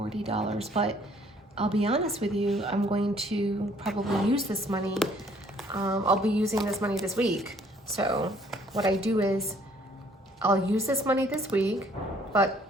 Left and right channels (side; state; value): both; normal; correlation 0.61